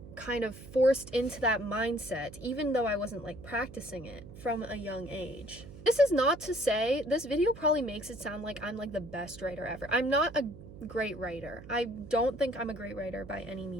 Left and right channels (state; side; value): noise; right; hum, 16 dB below the sound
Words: kind of forced into that mindset, even though I wasn't like practicing it from a young age. This is not to say, this video probably makes it sound like I'm like the best writer ever. I'm not a great writer. I don't think I'm a great writer by any